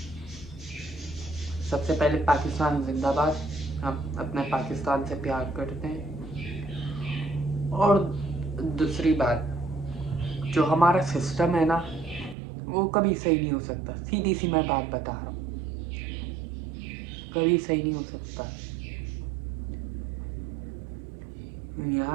सबसे पहले पाकिस्तान जिंदाबाद, हम अपने पाकिस्तान से प्यार करते हैं। और दूसरी बात, जो हमारा सिस्टम है ना वो कभी सही नहीं हो सकता। सीधी सी मैं बात बता रहा हूँ, कभी सही नहीं हो सकता।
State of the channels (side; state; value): left; drops out; at 12.4 s